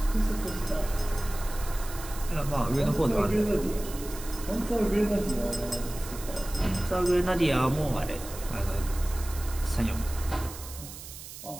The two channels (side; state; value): right; noise; hiss, 13 dB below the sound